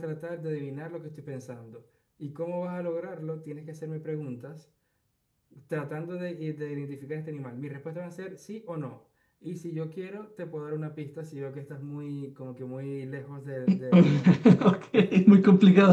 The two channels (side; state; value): both; identical; correlation 1.00